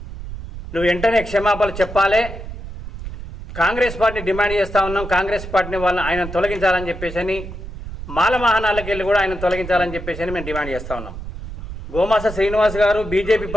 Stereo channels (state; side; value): noise; right; rumble, 10 dB below the sound